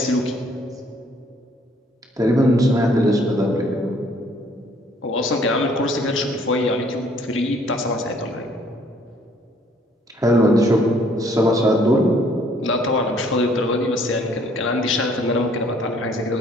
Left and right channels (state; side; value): normal; both; correlation 0.62